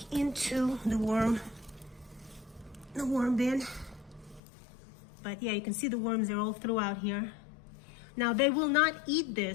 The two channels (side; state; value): right; drops out; at 4.4 s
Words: into the worm bin. But yeah, you can see the worms are all throughout here. Now they will not eat